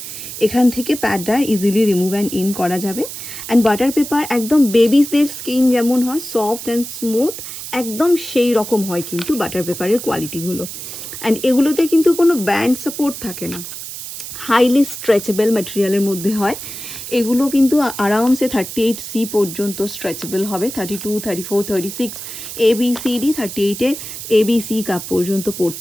এখান থেকে প্যাডটা ইজিলি রিমুভ অ্যান্ড ইন করা যাবে। অ্যান্ড বাটার পেপার একদম বেবিসদের স্কিন যেমন হয় সফট অ্যান্ড স্মুথ, একদম সেই রকম হয় কিন্তু বাটার পেপারের কোয়ালিটিগুলো। অ্যান্ড এগুলোতে কিন্তু কোনো ব্যান্ড সাপোর্ট থাকে না, হাইলি স্ট্রেচেবল ম্যাটেরিয়ালের মধ্যে হয়। এগুলো কিন্তু আরামসে 38C পর্যন্ত স্ট্রেচেবল হবে, 32, 34, 36 ABCD 38-এর ABC কাপ পর্যন্ত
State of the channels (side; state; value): right; noise; hiss, 9 dB below the sound